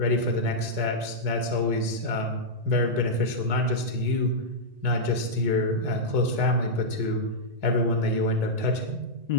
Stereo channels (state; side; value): late; left; 1.9 ms